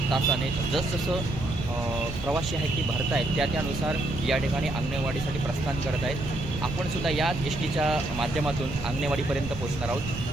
तासाने जसजसं प्रवासी आहेत ती भरत आहेत त्यानुसार या ठिकाणी आंगणेवाडीसाठी प्रस्थान करत आहेत। आपण सुद्धा याच एसटीच्या माध्यमातून आंगणेवाडीपर्यंत पोहोचणार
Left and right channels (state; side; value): noise; right; rumble, 8 dB below the sound